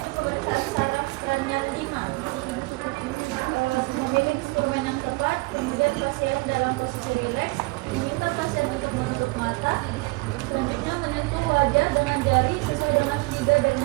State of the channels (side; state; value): left; quieter; 25.2 dB